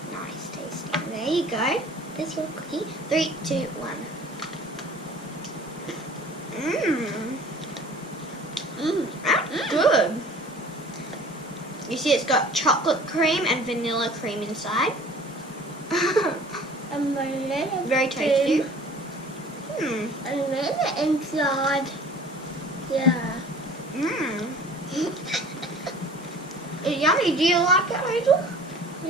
nice tasting. There you go. There's your cookie. 3, 2, 1. That's good. You see it's got chocolate cream and vanilla cream inside. Very tasty. And then inside. Yeah. It's yummy. Do you like it, Hazel?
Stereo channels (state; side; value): normal; both; correlation 0.47